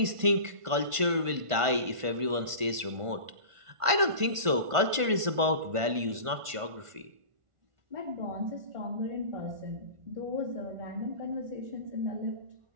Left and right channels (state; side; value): late; left; 1.5 ms